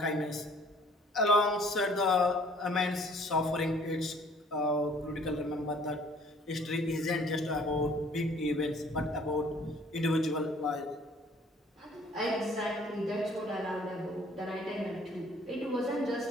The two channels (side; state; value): both; normal; correlation 0.56